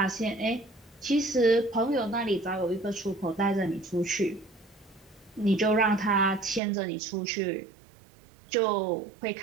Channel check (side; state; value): left; drops out; at 6.6 s